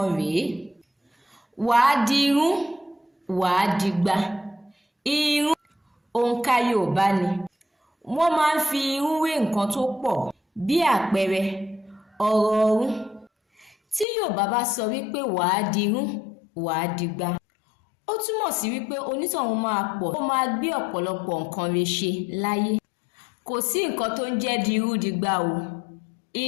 rèé. Wàá dirú, wàá dìgbà. Irú òǹkà Yoòbá ni. Wọ́n máa ń fi irú wé nǹkan tó pọ̀ bí àpẹẹrẹ ọ̀rọ̀ ọ̀run. Tí Yoòbá bá sọ wípé wàá dirú, wàá dìgbà, ó túmọ̀ sí wípé onítọ̀hún máa pọ̀, ó máa gbé ọ̀pọ̀lọpọ̀ nǹkan rẹ̀ ṣe láyé. Kò sí nǹkan tó ń jẹ́ dirú dìgbà o.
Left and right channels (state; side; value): drops out; right; at 14.1 s